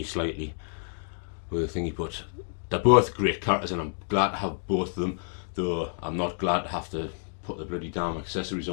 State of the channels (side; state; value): right; silent; 59 dB below the other